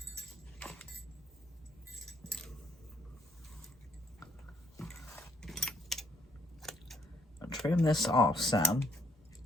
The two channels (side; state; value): both; normal; correlation 0.69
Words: trim this off some.